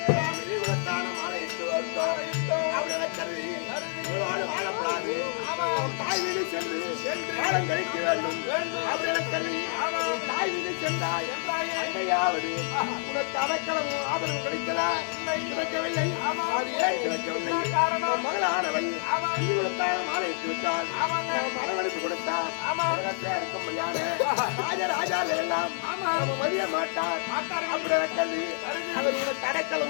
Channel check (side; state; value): right; silent; 59 dB below the other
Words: உனக்கு அடைக்கலமும் ஆதரவு கிடைத்ததா? கிடைக்கவில்லை. காரணம் மகளானவள் மாலையிட்டு விட்டால் மனவெடுப்பு கொடுத்தார். ராஜராஜால எல்லாம் மதிய மாட்டார். அப்படி கல்வி அவர் உனக்கு